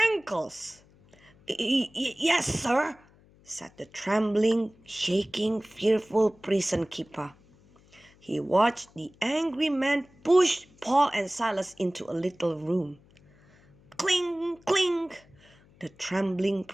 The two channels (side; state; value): left; noise; hum, 28 dB below the sound